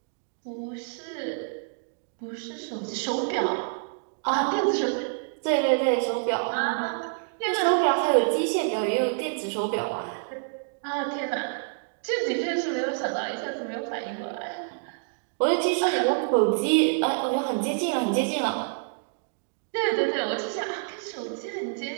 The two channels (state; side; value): silent; left; digital silence